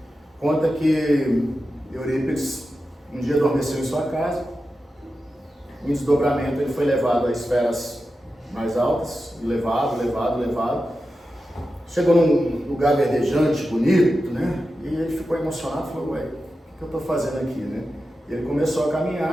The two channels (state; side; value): normal; both; correlation 0.91